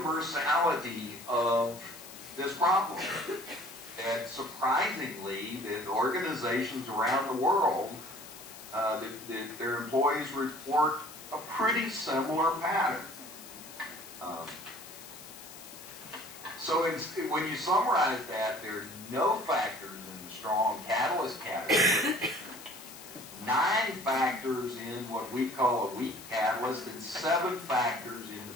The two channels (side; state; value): left; noise; hiss, 16 dB below the sound